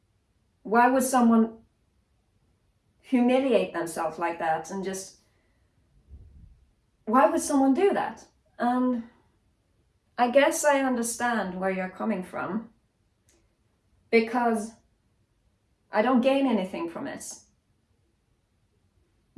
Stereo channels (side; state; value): both; identical; correlation 1.00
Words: Why would someone humiliate themselves like that and just, why would someone do that? And I guess I understand where you're coming from, because I don't gain anything from it.